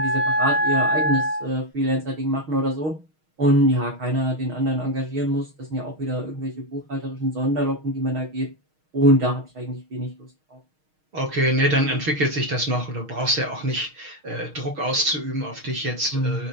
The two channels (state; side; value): late; left; 6.4 ms